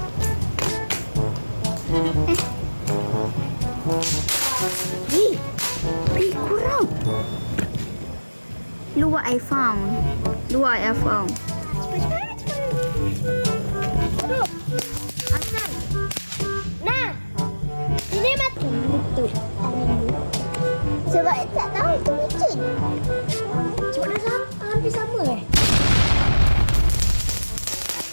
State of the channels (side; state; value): both; inverted; correlation -1.00